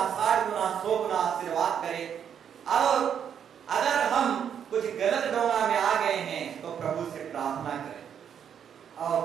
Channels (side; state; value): left; quieter; 8.4 dB